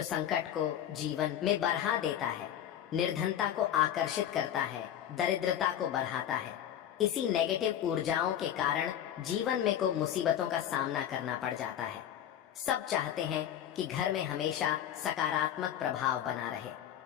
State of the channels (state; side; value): quieter; right; 10.5 dB